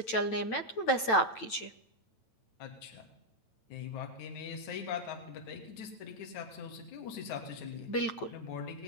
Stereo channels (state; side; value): late; right; 9.0 ms